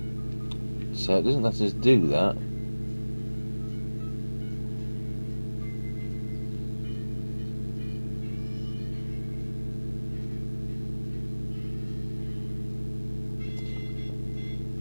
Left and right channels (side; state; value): both; inverted; correlation -1.00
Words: So it doesn't let us do that.